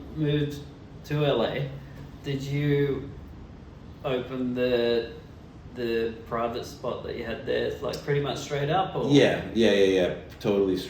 moved to LA, did you open the private spot that you had there, like pretty much straight up? Or? Yeah, totally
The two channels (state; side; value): identical; both; correlation 1.00